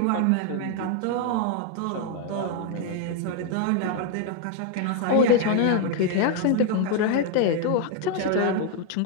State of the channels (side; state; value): both; different; correlation 0.01